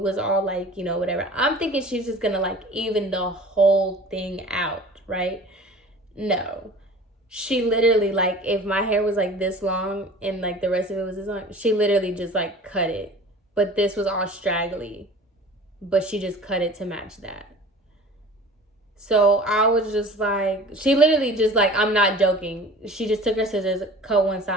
all like, you know, whatever. I'm thinking she's just going to, like, even the whole thing out, right? No. She literally, like, if my hair was, like, this long and, like, the rest of it was this long, she literally just, like, cut it. But this was all straggly. But she just cut it to match that. So I was just like, she literally just like, I'm not joking. She just took her scissors, cut one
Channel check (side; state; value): both; normal; correlation 0.43